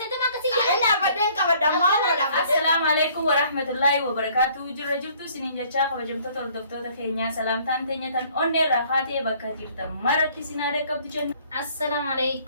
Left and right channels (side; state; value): both; inverted; correlation -0.58